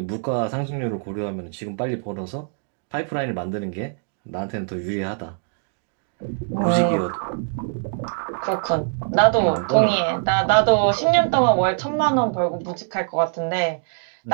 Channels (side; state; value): left; silent; 63 dB below the other